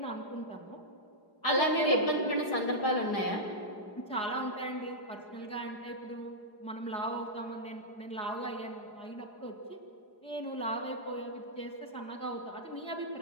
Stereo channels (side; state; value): right; late; 4.8 ms